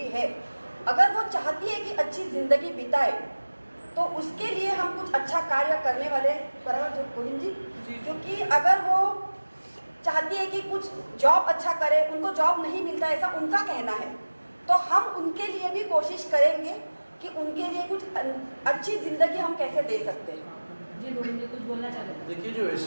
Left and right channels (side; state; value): both; inverted; correlation -1.00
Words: है, अगर वो चाहती है कि अच्छी जिंदगी बिताए, तो उसके लिए हम कुछ अच्छा कार्य करने वाले, बराबर जो गोविंद जी, क्योंकि अगर वो चाहती है कि कुछ जॉब अच्छा करे, उनको जॉब नहीं मिलता ऐसा उनका कहना है, तो हम उनके लिए भी कोशिश करेंगे कि उनके लिए कुछ अच्छी जिंदगी हम कैसे दे सकते हैं। जी गोविंद जी कुछ बोलना चाहते हैं? देखिए, जो